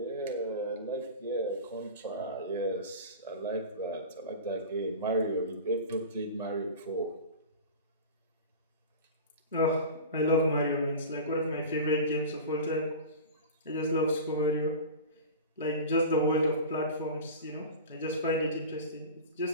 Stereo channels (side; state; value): both; inverted; correlation -0.32